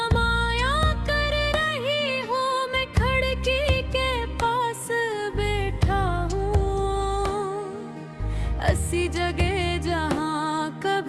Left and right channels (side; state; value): both; identical; correlation 1.00